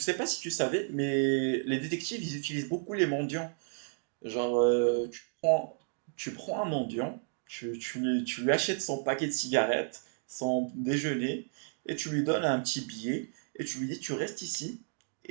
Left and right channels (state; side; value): silent; left; 56 dB below the other